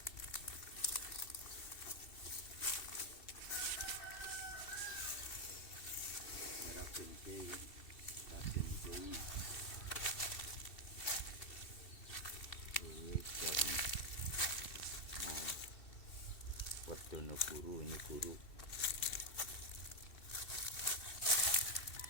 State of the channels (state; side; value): late; right; 2.7 ms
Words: Raden Kiai, Raden Kiai. Werdono Guru, ini guru.